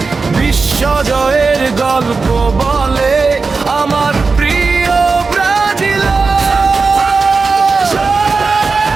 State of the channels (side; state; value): left; quieter; 4.4 dB